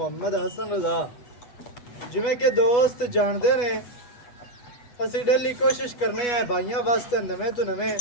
ਹਸਨ ਰਜ਼ਾ। ਜਿਵੇਂ ਕਿ ਦੋਸਤ ਜਾਣਦੇ ਨੇ, ਅਸੀਂ ਡੇਲੀ ਕੋਸ਼ਿਸ਼ ਕਰਨੇ ਆ ਭਾਈਆਂ ਵਾਸਤੇ ਨਵੇਂ ਤੋਂ ਨਵੇਂ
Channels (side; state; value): right; late; 8.3 ms